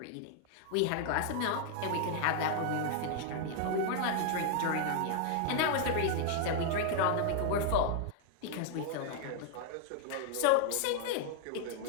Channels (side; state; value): both; different; correlation 0.00